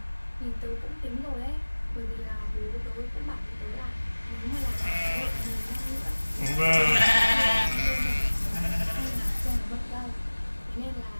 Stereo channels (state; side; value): inverted; both; correlation -1.00